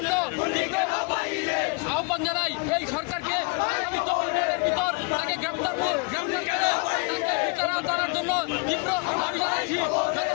আহ্বান জানাই। এই সরকারকে আগামী 24 ঘন্টার ভিতর তাকে গ্রেপ্তার করে তাকে বিচার আওতার জন্য তীব্র দাবি জানাচ্ছি।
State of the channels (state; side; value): quieter; right; 31.9 dB